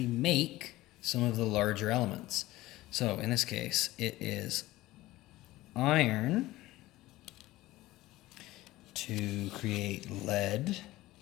make some of the larger elements. So in this case, it is iron to create lead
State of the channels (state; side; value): quieter; right; 17.4 dB